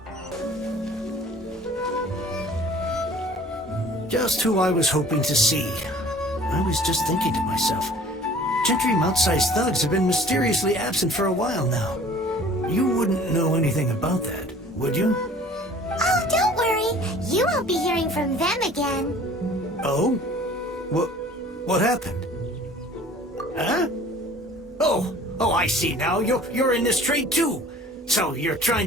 Just who I was hoping to see. I was just thinking to myself, Gentry mount-sized thugs have been mysteriously absent for a while now. You wouldn't know anything about that, would you? Oh, don't worry. You won't be hearing from them again. Oh? What happened? Huh? Oh, I see now. You're in this trade too. So you're trying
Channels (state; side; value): normal; both; correlation 0.49